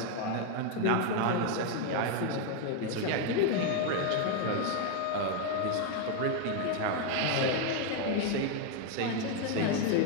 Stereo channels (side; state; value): both; different; correlation 0.01